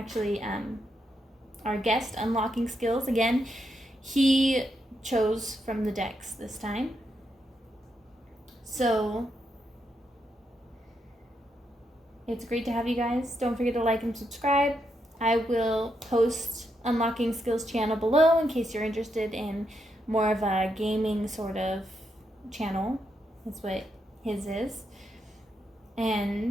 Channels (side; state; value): both; normal; correlation 0.81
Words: our guest unlocking skills. Again, he chose from the decks this time. So it's great to have you guys. Don't forget to like and subscribe. I will post Unlocking Skills channel below in case you're interested in more of a gaming sort of channel. That's what his is.